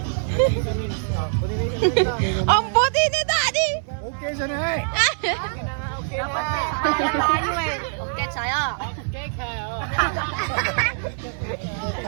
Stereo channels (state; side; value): silent; left; digital silence